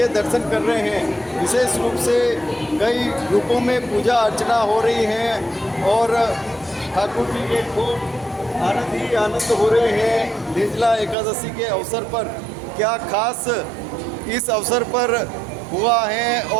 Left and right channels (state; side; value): drops out; left; at 11.2 s